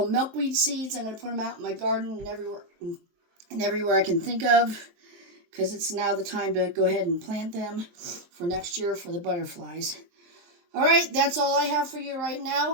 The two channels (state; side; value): late; left; 23 ms